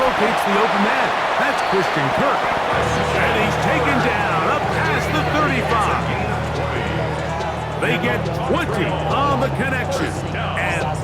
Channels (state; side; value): identical; both; correlation 1.00